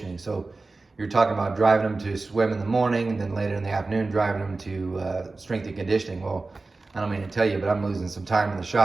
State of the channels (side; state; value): left; quieter; 3.5 dB